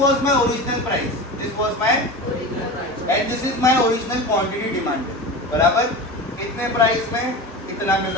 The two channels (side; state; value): both; normal; correlation 0.28